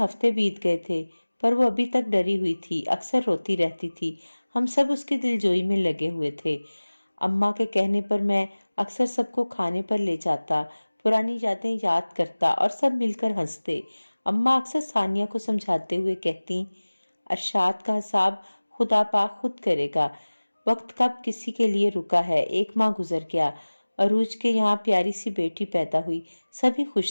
بیت گئے تھے، پر وہ ابھی تک ڈری ہوئی تھی، اکثر روتی رہتی تھی۔ ہم سب اس کی دلجوئی میں لگے ہوئے تھے۔ اماں کے کہنے پر میں اکثر سب کو کھانے پر لے جاتا، پرانی یادیں یاد کرتا اور سب مل کر ہنستے۔ اماں اکثر ثانیہ کو سمجھاتے ہوئے کہتی، ارشاد کا حساب خدا پاک خود کرے گا، وقت کب کسی کے لیے رکا ہے۔ 1 ماہ گزر گیا، عروج کے یہاں پیاری سی بیٹی پیدا ہوئی، سبھی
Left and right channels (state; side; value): inverted; both; correlation -1.00